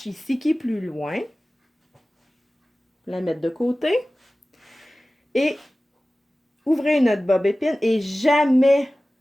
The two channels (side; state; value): both; normal; correlation 0.97